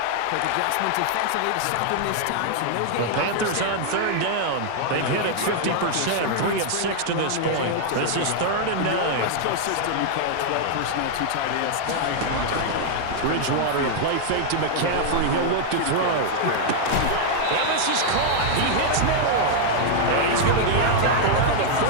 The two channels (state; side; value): different; both; correlation 0.00